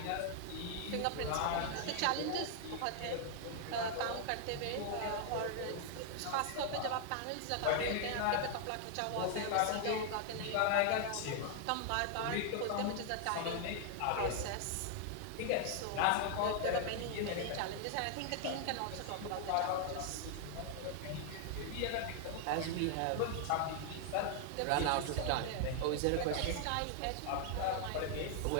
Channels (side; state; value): both; different; correlation 0.00